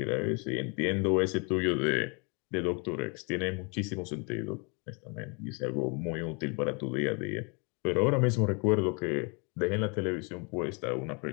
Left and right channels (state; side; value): quieter; right; 33.6 dB